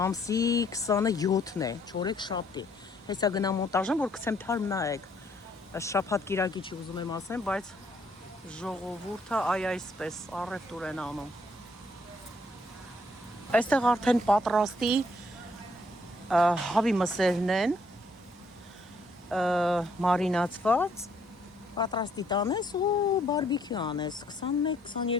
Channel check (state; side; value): normal; both; correlation 0.67